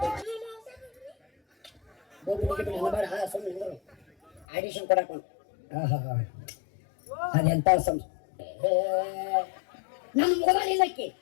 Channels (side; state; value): right; drops out; at 4.5 s